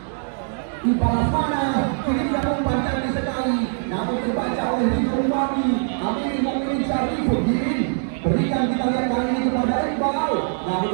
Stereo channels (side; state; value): left; silent; 64 dB below the other